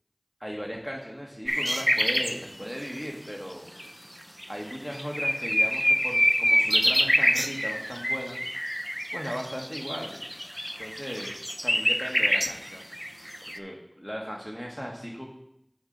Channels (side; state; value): both; identical; correlation 1.00